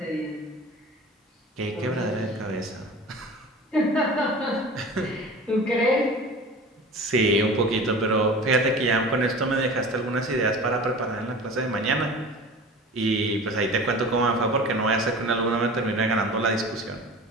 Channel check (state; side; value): normal; both; correlation 0.37